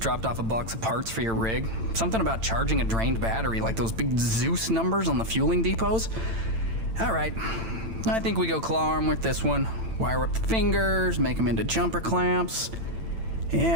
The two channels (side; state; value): left; late; 8.9 ms